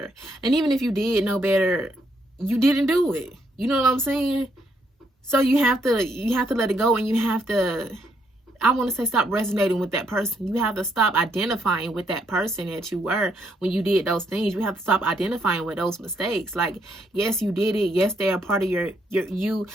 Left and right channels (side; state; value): both; normal; correlation 0.74